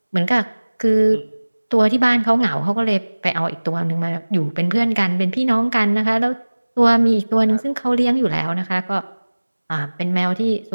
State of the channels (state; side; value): inverted; both; correlation -1.00